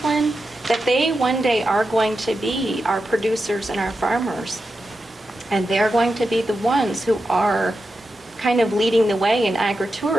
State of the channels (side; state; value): both; normal; correlation 0.90